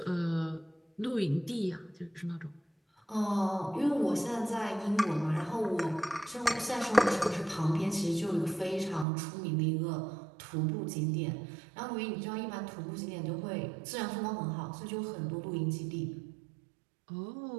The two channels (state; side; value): drops out; left; at 9.1 s